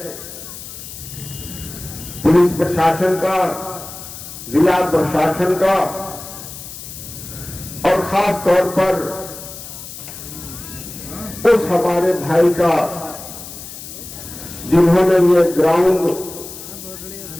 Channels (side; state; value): left; noise; hiss, 12 dB below the sound